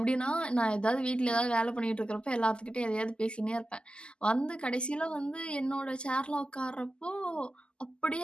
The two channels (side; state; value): right; late; 0.050 ms